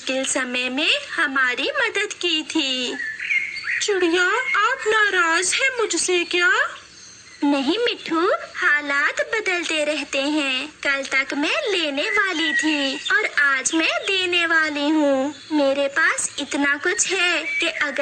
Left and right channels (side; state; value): both; identical; correlation 1.00